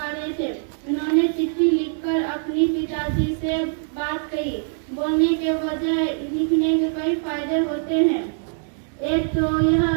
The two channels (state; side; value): silent; left; digital silence